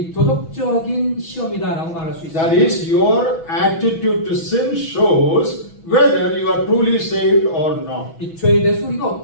도덕적인 시험이다라고 말할 수 That 있습니다. is, your attitude to sin shows whether you are truly saved or not. 이 죄에 대해서 우리가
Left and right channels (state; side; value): late; right; 6.1 ms